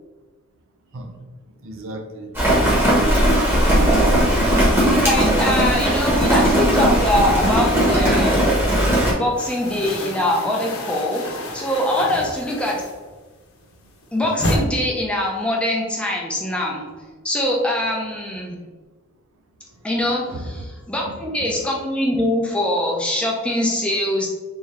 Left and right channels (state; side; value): normal; both; correlation 0.48